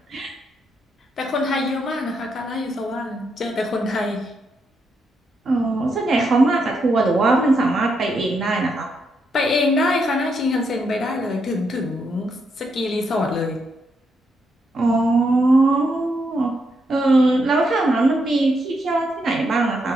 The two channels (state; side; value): normal; both; correlation 0.79